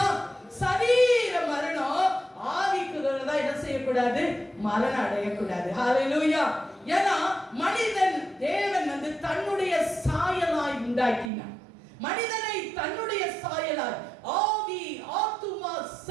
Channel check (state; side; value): drops out; left; at 11.3 s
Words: சரீர மரணம். ஆவிக்குள்ளதான் என்ன செய்யக்கூடாது, மரணம் அடையக்கூடாது. ஹல்லேலூயா. ஏன்னா மனிதன் தேவன் தன்னுடைய சாயலாய் உண்டாக்கினார். மனிதனை தன்னுடைய சாயலாய், ஆவி, ஆத்துமா,